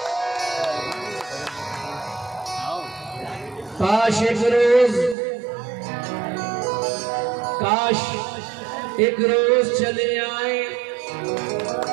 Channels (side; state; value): left; drops out; at 5.2 s